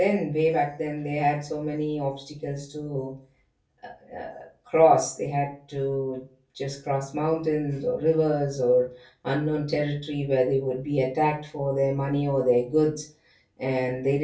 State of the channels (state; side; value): identical; both; correlation 1.00